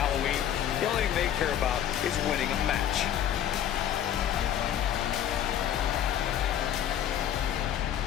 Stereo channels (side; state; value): right; quieter; 10.2 dB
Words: The only thing they care about is winning a match.